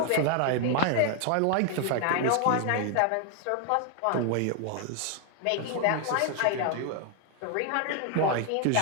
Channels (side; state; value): both; different; correlation 0.00